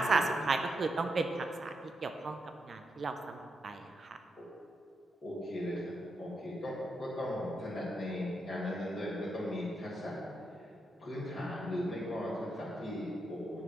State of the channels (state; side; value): normal; both; correlation 0.83